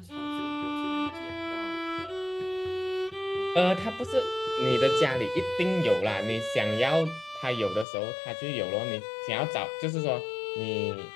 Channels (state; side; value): drops out; right; at 7.9 s